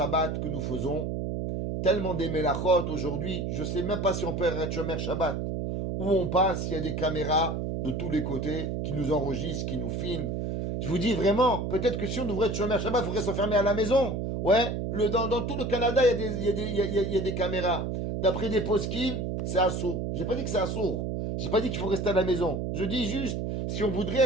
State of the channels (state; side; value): noise; right; hum, 2 dB below the sound